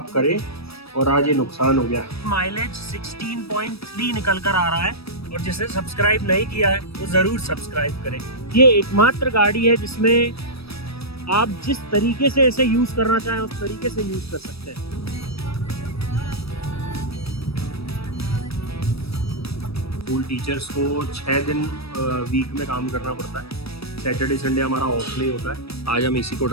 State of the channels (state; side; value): late; right; 0.78 ms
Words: करे और आज ये नुकसान हो गया। माइलेज 16.3 निकल कर आ रहा है और जिसने सब्सक्राइब नहीं किया है वो जरूर सब्सक्राइब करें। ये एकमात्र गाड़ी है जिसमें आप जिस तरीके से इसे यूज करना चाहें उस तरीके से यूज कर सकते हैं। स्कूल टीचर्स को 6 दिन वीक में काम करना पड़ता है। सैटरडे संडे हमारा ऑफ नहीं होता है। आज हम इसी को